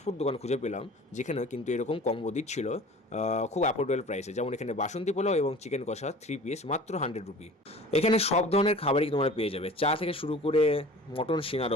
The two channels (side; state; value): both; normal; correlation 0.43